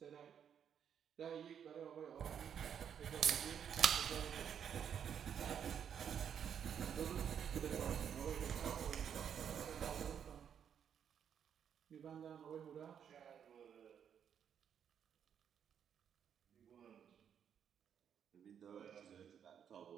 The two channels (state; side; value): quieter; left; 8.3 dB